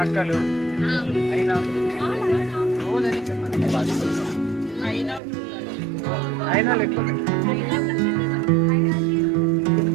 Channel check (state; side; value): drops out; left; at 5.2 s